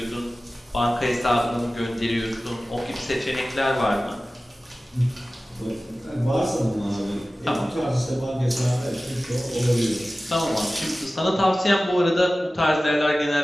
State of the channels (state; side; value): normal; both; correlation 0.96